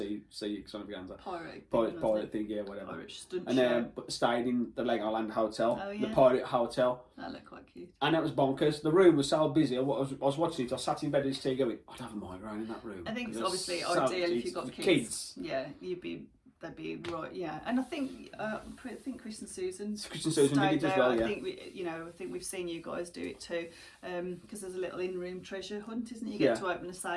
extravaganza. Pirate thing, yeah, whatever. Pirate stunt and then stayed in the Legoland Hotel, the Pirate Hotel. That looked quite cute. And that was bonkers. The room was so busy. I was watching it. I sat in bed with this tea going, I'd have a migraine in that room. I think it's obviously ideal if you've got kids. Yeah, they'd be right. Yeah, and I think Chris and Susan did it as well. Yeah. I think we've seen you guys do it too, because there's a little in-room treasure hunt, isn't it? You get to open a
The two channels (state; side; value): identical; both; correlation 1.00